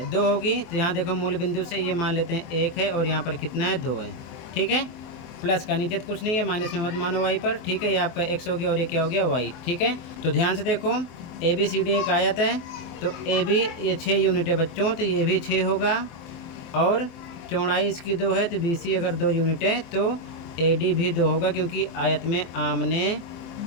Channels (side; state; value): right; late; 23 ms